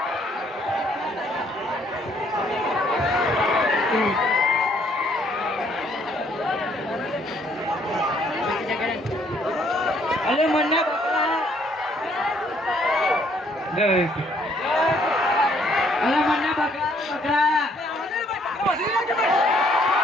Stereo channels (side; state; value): both; normal; correlation 0.65